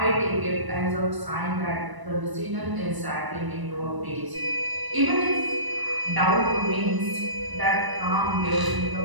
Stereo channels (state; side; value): late; left; 1.0 ms